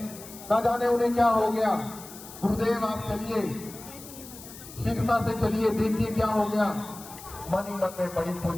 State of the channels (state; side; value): noise; left; hiss, 16 dB below the sound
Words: ना जाने उन्हें क्या हो गया। गुरुदेव आप चलिए, शीघ्रता से चलिए, देखिए क्या हो गया। मन ही मन में बड़ी